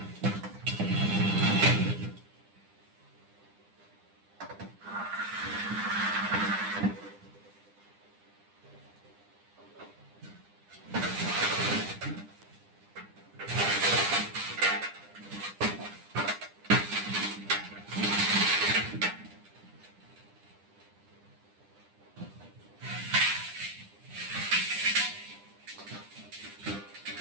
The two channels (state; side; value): late; left; 9.9 ms